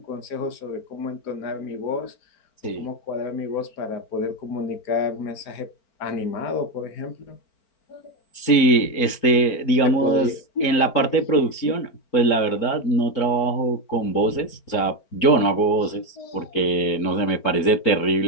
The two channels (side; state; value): right; late; 4.4 ms